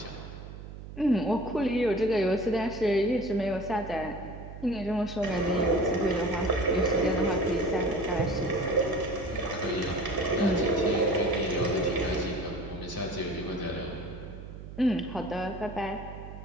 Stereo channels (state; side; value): noise; right; hum, 12 dB below the sound